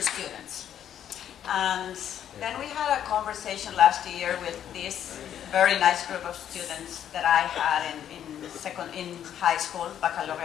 students. And then we had a conversation last year with this very nice group of students that I had in high school,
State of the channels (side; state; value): right; quieter; 10.0 dB